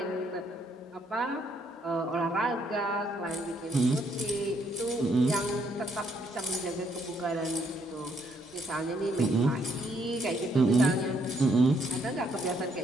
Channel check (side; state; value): both; normal; correlation 0.71